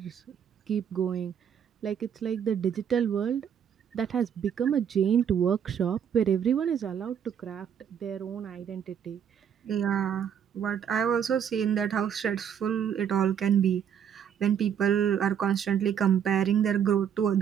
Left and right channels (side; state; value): left; quieter; 8.4 dB